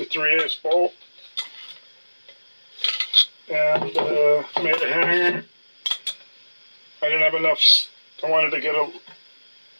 3/8 bolt and made a hanger. I didn't have enough. I wanted to get a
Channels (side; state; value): both; inverted; correlation -1.00